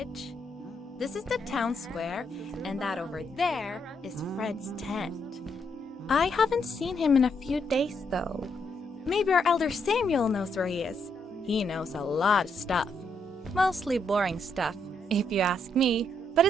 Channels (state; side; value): normal; both; correlation 0.76